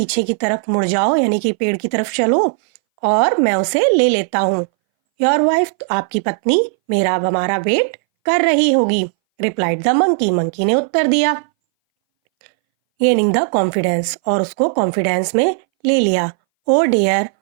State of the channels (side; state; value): left; silent; 63 dB below the other